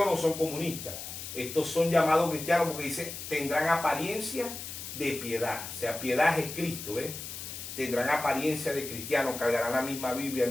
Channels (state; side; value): noise; left; hiss, 9 dB below the sound